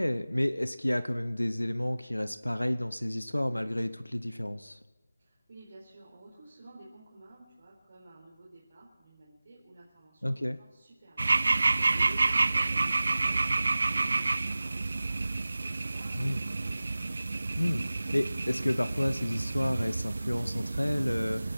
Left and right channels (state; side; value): inverted; both; correlation -0.98